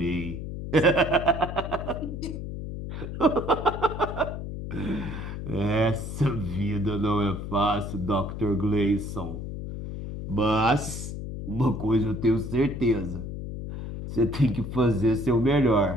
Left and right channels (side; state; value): left; noise; hum, 7 dB below the sound